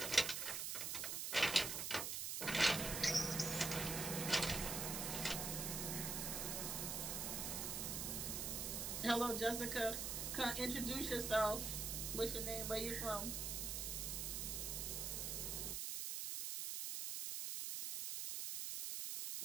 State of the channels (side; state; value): right; noise; hiss, 2 dB below the sound